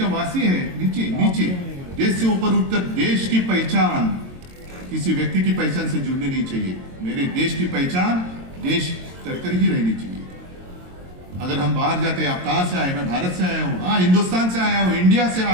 वासी है, नीचे नीचे। देश से ऊपर उठकर देश की पहचान किसी व्यक्ति की पहचान से जुड़नी नहीं चाहिए। मेरे देश की पहचान देश कर ही रहनी चाहिए। अगर हम बाहर जाते, आप कहां से आए? मैं भारत से आया हूं, हाँ हिंदुस्तान से आया हूं, इंडिया से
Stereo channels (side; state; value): left; late; 22 ms